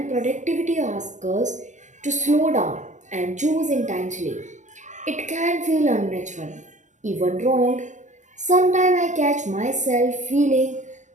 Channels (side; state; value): left; late; 0.35 ms